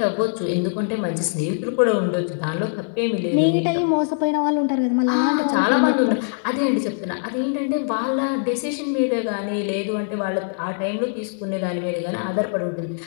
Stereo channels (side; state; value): right; silent; digital silence